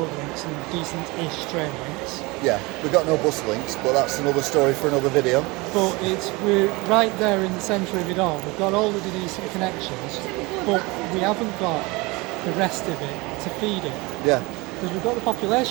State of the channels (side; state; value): left; quieter; 24.4 dB